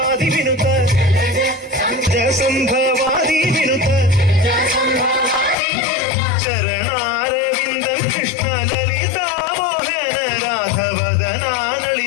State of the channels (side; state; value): right; drops out; at 5.6 s